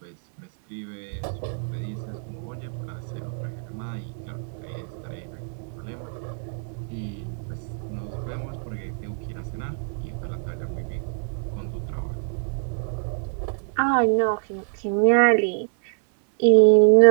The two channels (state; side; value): silent; left; digital silence